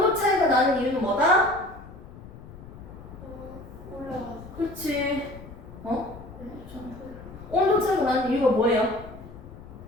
차이가 나는 이유는 뭐다? 올라가서. 그렇지. 어? 네? 온도 차이가 나는 이유가 뭐예요?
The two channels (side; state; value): left; noise; rumble, 16 dB below the sound